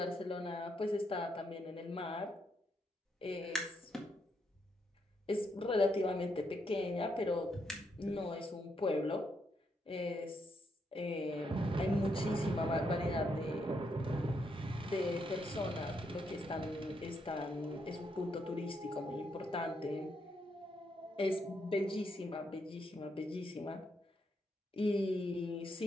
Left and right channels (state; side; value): normal; both; correlation 0.78